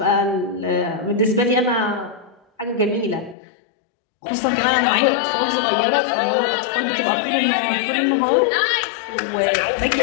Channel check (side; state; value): right; drops out; at 3.4 s